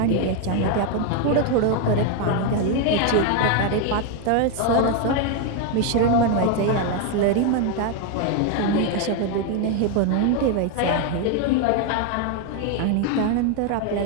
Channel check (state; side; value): different; both; correlation 0.01